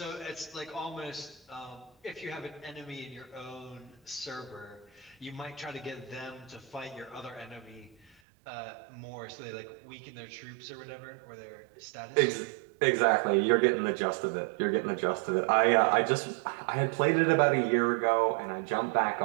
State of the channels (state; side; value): drops out; left; at 8.2 s